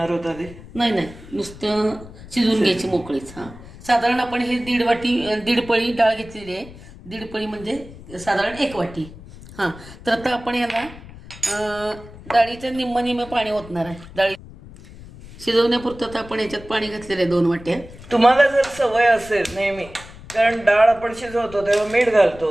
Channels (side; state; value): left; noise; rumble, 17 dB below the sound